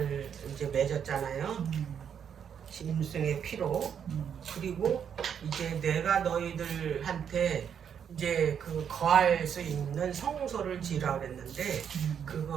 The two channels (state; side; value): quieter; left; 8.0 dB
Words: 이제 맺었잖아요. 짐승의 피로. 그리고 이제 내가 너희들한테 이제 그 거할 수 있는 성소를 지으라 그랬는데